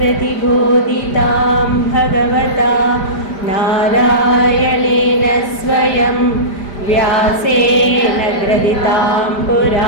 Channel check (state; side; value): late; right; 5.0 ms